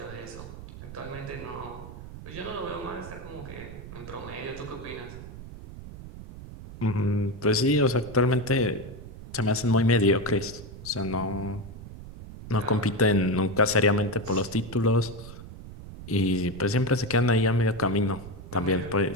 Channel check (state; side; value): noise; right; rumble, 13 dB below the sound